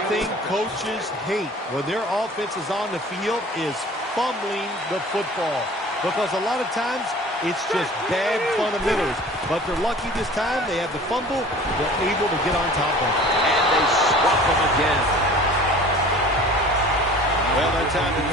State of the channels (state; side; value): normal; both; correlation 0.45